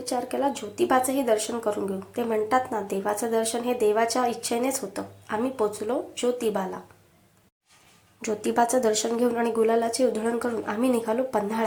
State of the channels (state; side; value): identical; both; correlation 1.00